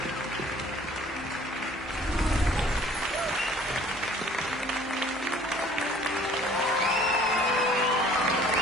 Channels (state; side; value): normal; both; correlation 0.53